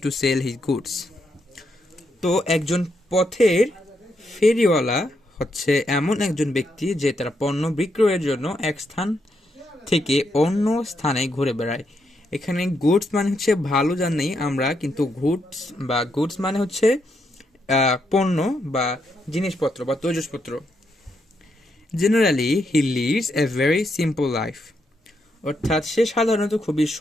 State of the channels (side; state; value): both; normal; correlation 0.79